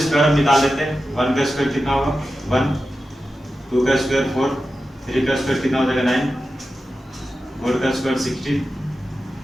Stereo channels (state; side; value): normal; both; correlation 0.92